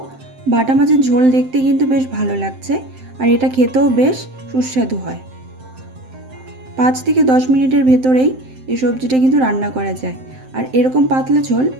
বাটা মাছের ঝোল দেখতে কিন্তু বেশ ভালো লাগছে আর এটা খেতেও বেশ সুস্বাদু হয়। 5 থেকে 10 মিনিটের ভেতরেই এই সবজিটা কিন্তু রান্না করা যায়। আর এরকম পাতলা ঝোল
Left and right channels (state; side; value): late; left; 7.7 ms